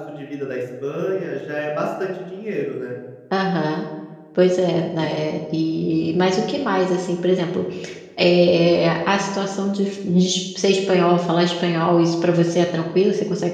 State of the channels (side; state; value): both; identical; correlation 1.00